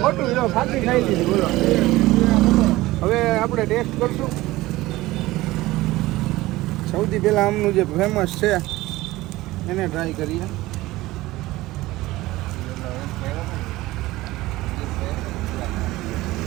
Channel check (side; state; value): left; quieter; 18.3 dB